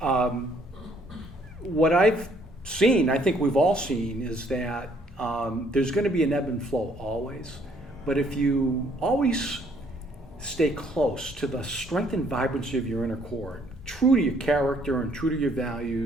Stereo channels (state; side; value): normal; both; correlation 0.65